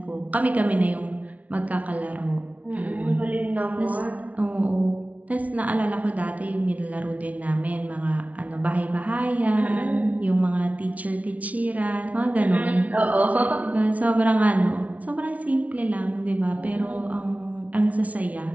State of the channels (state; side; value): late; left; 0.069 ms